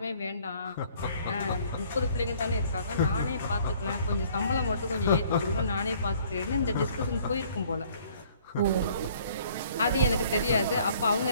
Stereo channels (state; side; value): inverted; both; correlation -0.58